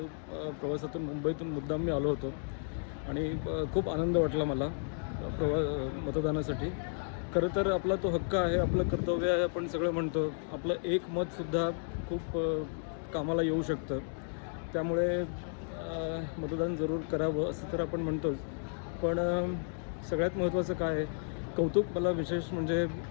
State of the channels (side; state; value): right; silent; 56 dB below the other